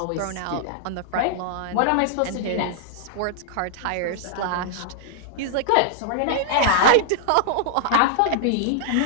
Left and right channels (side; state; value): both; different; correlation -0.01